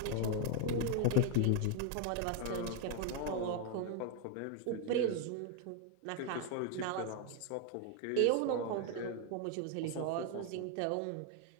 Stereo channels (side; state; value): both; different; correlation 0.01